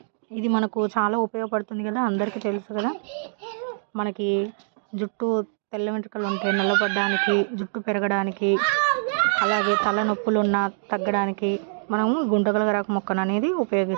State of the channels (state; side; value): silent; left; digital silence